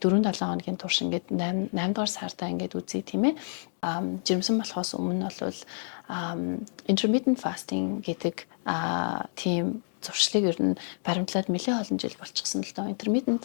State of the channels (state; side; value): silent; right; digital silence